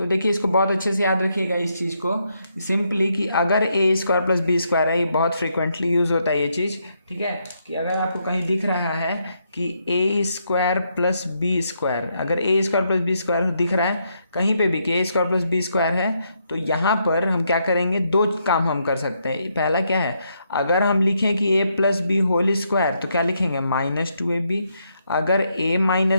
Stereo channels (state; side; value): inverted; both; correlation -0.77